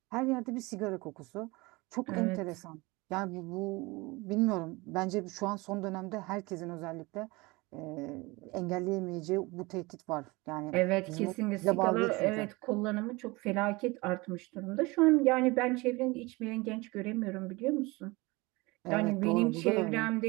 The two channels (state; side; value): quieter; left; 23.7 dB